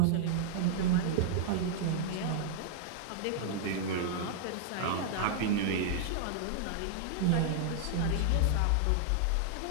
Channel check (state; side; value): different; both; correlation -0.01